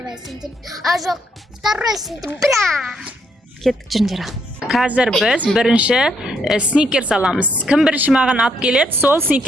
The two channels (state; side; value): normal; both; correlation 0.73